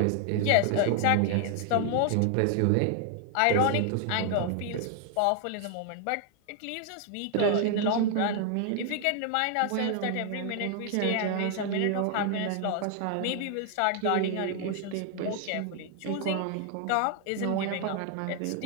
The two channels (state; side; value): different; both; correlation 0.00